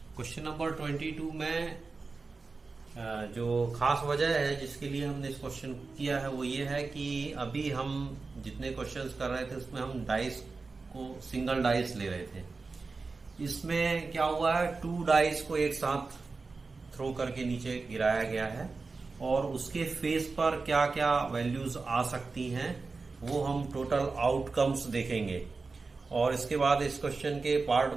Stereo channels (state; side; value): quieter; left; 4.1 dB